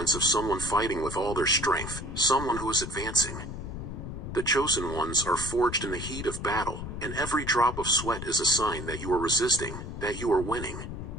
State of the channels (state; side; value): noise; left; rumble, 7 dB below the sound